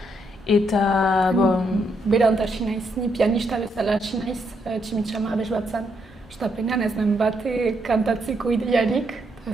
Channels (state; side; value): normal; both; correlation 0.77